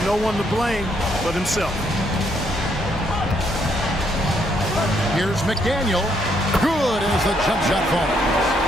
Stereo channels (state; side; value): noise; right; hum, 16 dB below the sound